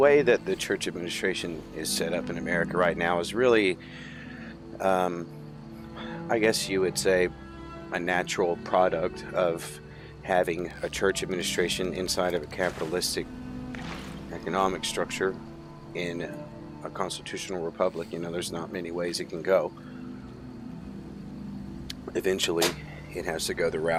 that the church administration is set up in America right now is really, I guess you would say, a natural product of having a church administration inside of a capitalistic economic structure in a constitutional republic. You know, there's not many ways it can go. Eventually, it has to go the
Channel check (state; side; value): identical; both; correlation 1.00